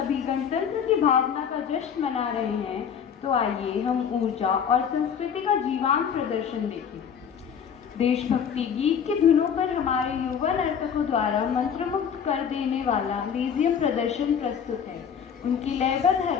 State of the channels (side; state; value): right; quieter; 7.6 dB